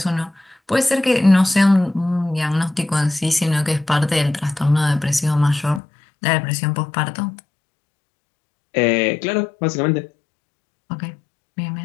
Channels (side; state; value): right; drops out; at 5.8 s